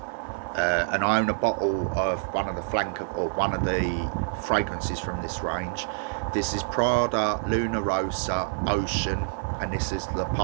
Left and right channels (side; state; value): left; silent; digital silence